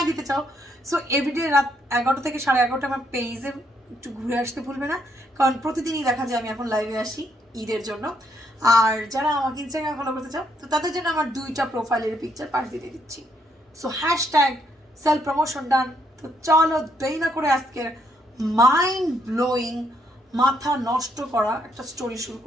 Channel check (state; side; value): normal; both; correlation 0.73